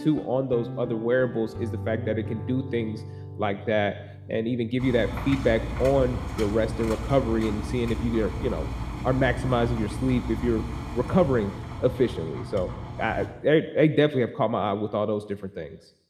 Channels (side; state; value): both; identical; correlation 1.00